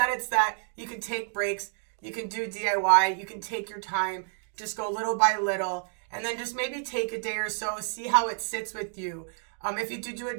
it's that you can take breaks. You can do DIY. You can take your time. Just go little by little. And then just maybe take a day or so. See how it sits with you. If you do a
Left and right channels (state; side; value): silent; left; 56 dB below the other